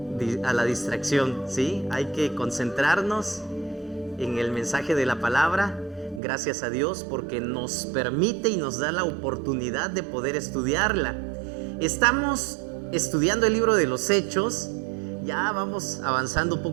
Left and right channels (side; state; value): left; drops out; at 6.2 s